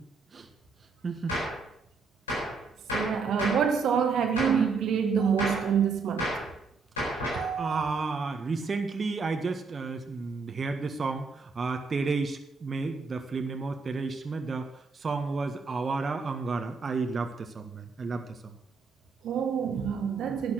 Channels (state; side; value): quieter; left; 4.8 dB